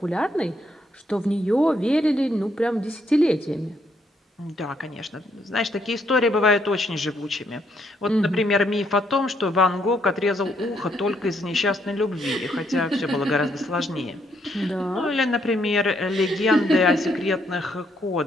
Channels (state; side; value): normal; both; correlation 0.73